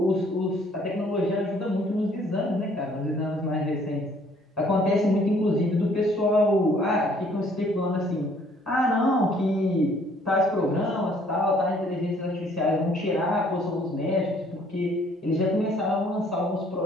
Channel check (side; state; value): both; normal; correlation 0.61